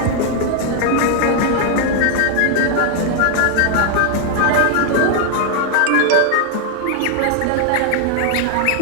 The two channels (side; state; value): both; different; correlation 0.00